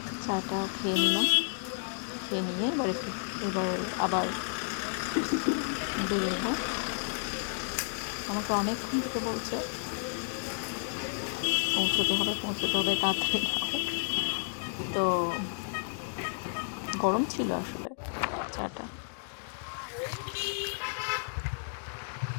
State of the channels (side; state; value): right; silent; digital silence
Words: চাটা খেয়ে নিলাম, খেয়ে নিয়ে এবার আবার বেরোবো। আমাকে অনেকক্ষণ থেকে বলছে পৌঁছতে হবে তাড়াতাড়ি নাও। তো গরম ছিল আসলে চাটা।